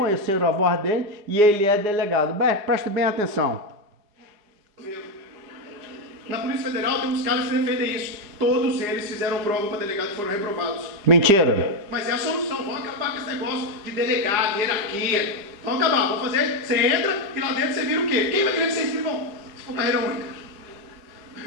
a voz dele e ele é delegado. Preste bem atenção. Na Polícia Federal tem uns caras que defendem isso. Todos eles fizeram prova para delegado e foram reprovados. Mentira. Mas é a solução. Vão acabar com esse negócio de delegado, hierarquia. Vão acabar. Vão fazer. Você entra e lá dentro você vira o quê? Quem vai querer ser escrivão? Se for carreira única.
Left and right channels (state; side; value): late; left; 4.9 ms